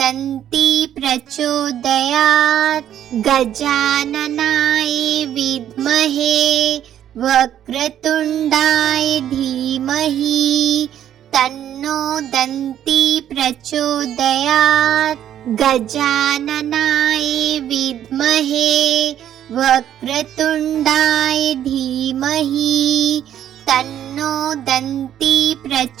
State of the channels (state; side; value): quieter; left; 10.6 dB